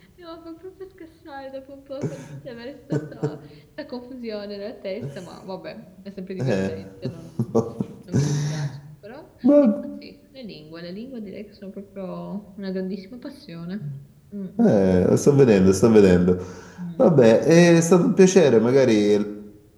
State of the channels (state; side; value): identical; both; correlation 1.00